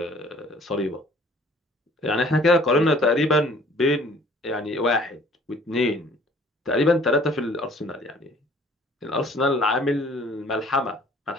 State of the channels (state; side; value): normal; both; correlation 0.54